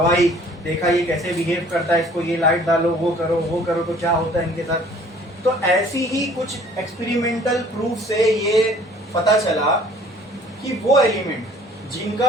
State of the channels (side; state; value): both; normal; correlation 0.53